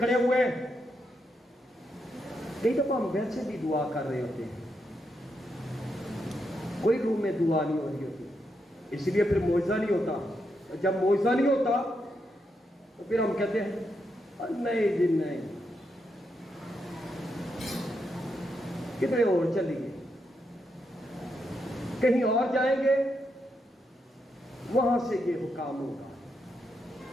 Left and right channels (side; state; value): both; normal; correlation 0.82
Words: ہوئے ہیں، کئی دفعہ ہم ویسے بھی دعا کر رہے ہوتے ہیں، کوئی روح میں دعا نہیں ہو رہی ہوتی، اس لیے پھر معجزہ نہیں ہوتا۔ جب معجزہ نہیں ہوتا تو پھر ہم کہتے ہیں نہیں جی نہیں، کتنے اور چلیے، کہیں اور جائیں گے، وہاں سے یہ حکام ہوگا،